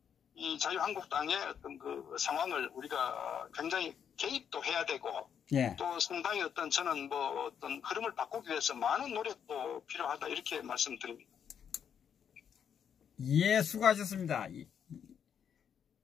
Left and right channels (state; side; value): quieter; right; 8.1 dB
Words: 이 자유한국당의 어떤 그 상황을 우리가 굉장히 개입도 해야 되고 예. 또 상당히 어떤 저는 뭐 어떤 흐름을 바꾸기 위해서 많은 노력도 필요하다 이렇게 말씀드립니다. 예, 수고하셨습니다.